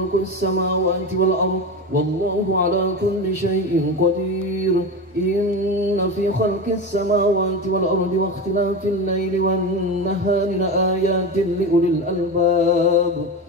السماوات والأرض والله على كل شيء قدير إن في خلق السماوات والأرض واختلاف الليل والنهار لآيات لأولي الألباب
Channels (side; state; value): both; normal; correlation 0.23